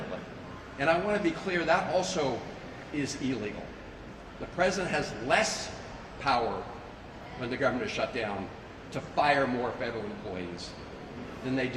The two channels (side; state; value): both; identical; correlation 1.00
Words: And I want to be clear, that also is illegal. The president has less power when the government is shut down to fire more federal employees than they